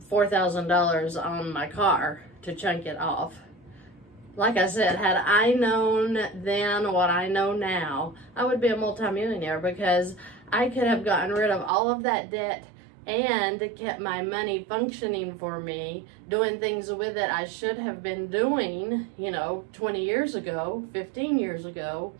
$4,000 on my car to chunk it off. Like I said, had I known then what I know now, I would be a multimillionaire, because I could have gotten rid of all of that debt and kept my money functioning for me, doing things with it I should have been doing, you know, 20 years ago, 15 years ago,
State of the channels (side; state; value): left; drops out; at 11.7 s